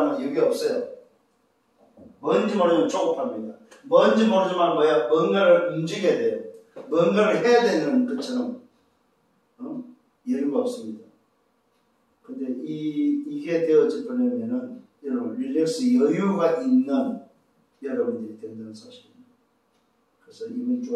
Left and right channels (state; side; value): identical; both; correlation 1.00